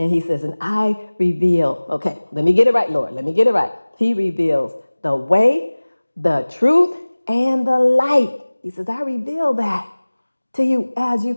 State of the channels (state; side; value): inverted; both; correlation -1.00